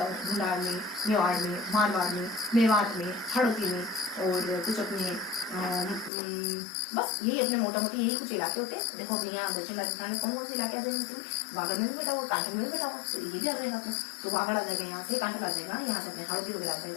ढूंढाड़ में, मेवाड़ में, मारवाड़ में, मेवात में, हड़ौती में, और कुछ अपने बस यही अपने मोटा मोटी यही कुछ इलाके होते हैं। देखो अपने यहाँ दक्षिण राजस्थान में कौन कौन से इलाके आ जाएंगे, वागड़ में भी बेटा हुआ, कांठल में भी बेटा हुआ, तो ये भी आ जाएगा अपने, तो वागड़ आ जाएगा, यहाँ से कांठल आ जाएगा, यहाँ से अपने हड़ौती वगैरह आ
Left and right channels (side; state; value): right; drops out; at 6.1 s